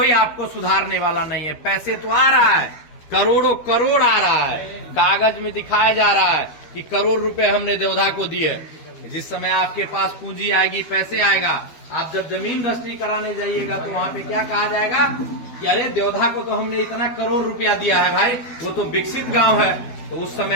आपको सुधारने वाला नहीं है। पैसे तो आ रहा है, करोड़ों करोड़ आ रहा है, कागज में दिखाया जा रहा है कि करोड़ रुपए हमने देवधा को दिए। जिस समय आपके पास पूंजी आएगी, पैसे आएगा, आप जब जमीन रजिस्ट्री कराने जाइएगा तो वहां पे क्या कहा जाएगा कि अरे देवधा को तो हमने इतना करोड़ रुपया दिया है भाई, वो तो विकसित गांव है। तो उस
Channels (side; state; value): right; late; 12 ms